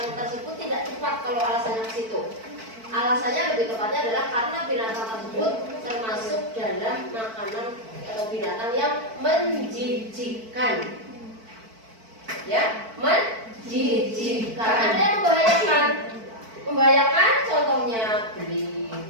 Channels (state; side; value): late; left; 4.5 ms